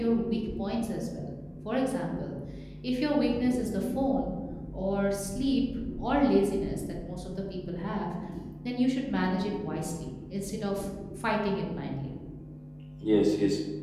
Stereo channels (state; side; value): identical; both; correlation 1.00